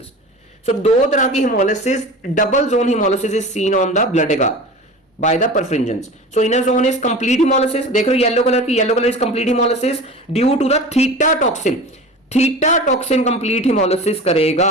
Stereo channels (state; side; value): normal; both; correlation 0.35